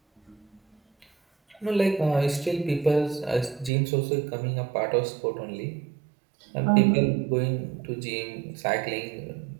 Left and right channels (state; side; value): drops out; left; at 3.7 s